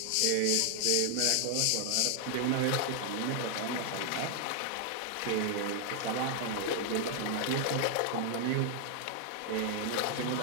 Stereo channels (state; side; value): different; both; correlation 0.00